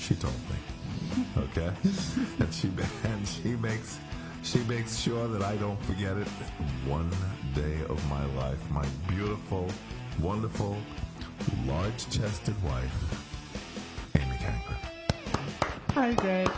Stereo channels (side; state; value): both; identical; correlation 1.00